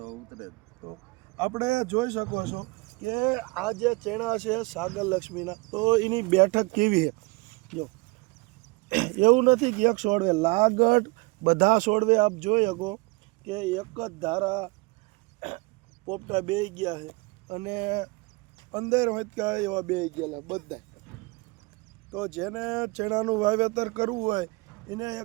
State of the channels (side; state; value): left; quieter; 26.3 dB